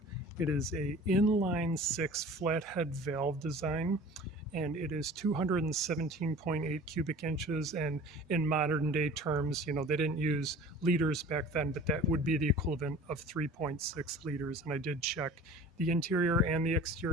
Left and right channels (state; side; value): normal; both; correlation 0.43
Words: It is a inline six flathead valve design, and it is 217.8 cubic inches. And in modern day terms, they didn't use liters back then, but that would be the equivalent of 3.6 liters. And I did check the interior and the